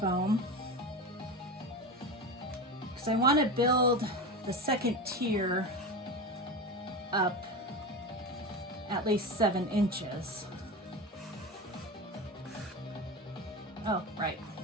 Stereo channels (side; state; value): both; normal; correlation 0.24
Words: because I want to build the second tier up at least 7 inches. Oh, right.